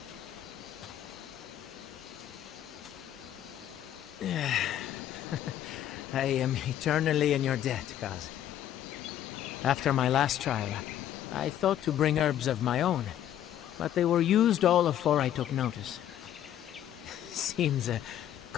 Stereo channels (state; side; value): quieter; right; 11.2 dB